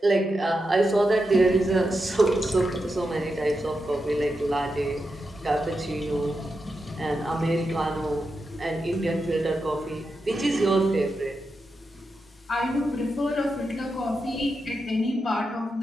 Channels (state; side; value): normal; both; correlation 0.87